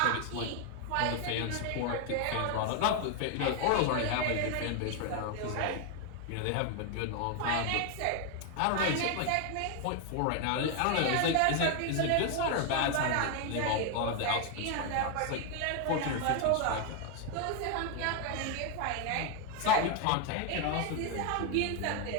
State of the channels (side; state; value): both; different; correlation 0.01